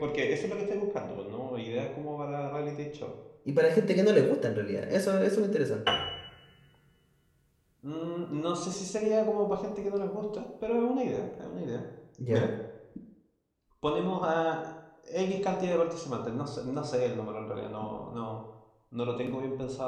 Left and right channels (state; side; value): identical; both; correlation 1.00